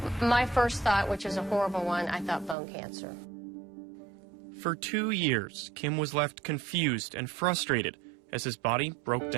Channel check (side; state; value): left; drops out; at 2.6 s